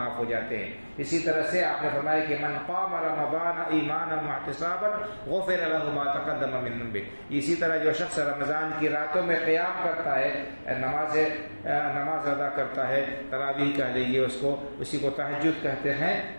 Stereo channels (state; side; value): inverted; both; correlation -1.00